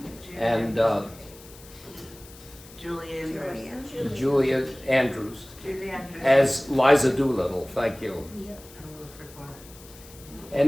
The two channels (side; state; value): left; noise; hiss, 20 dB below the sound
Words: and Julia Andrews as Liza Doolittle. Thank you.